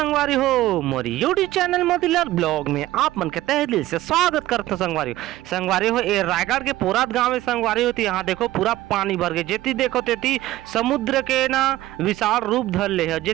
हो मोरी यूट्यूब चैनल मोतीलाल ब्लॉग में आप मन के तहे दिल से स्वागत करते संगवारी हो ये रायगढ़ के पोरात गांव में संगवारी होती। यहाँ देखो पूरा पानी भर गए, जेती देखो तेती समुद्र के ना विशाल रूप धर ले है।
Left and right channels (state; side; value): quieter; left; 15.8 dB